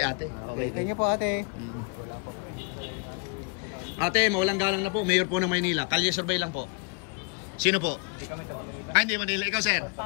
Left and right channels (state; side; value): quieter; right; 33.1 dB